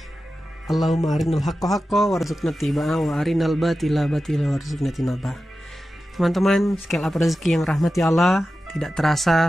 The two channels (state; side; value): normal; both; correlation 0.93